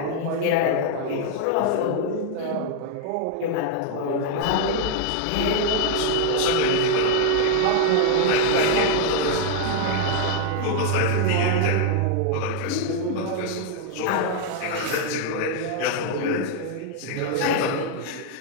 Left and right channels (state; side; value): different; both; correlation 0.00